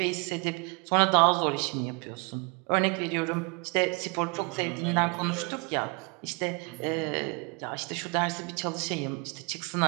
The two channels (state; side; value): quieter; left; 30.9 dB